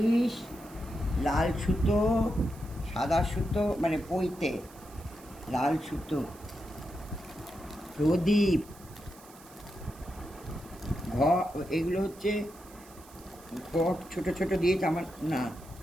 লাল সুতো, সাদা সুতো মানে পইতে, লাল সুতো, প্রদীপ, এগুলো হচ্ছে ঘট ছোট ছোট দিয়েছে আমার না,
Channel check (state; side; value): noise; right; hiss, 22 dB below the sound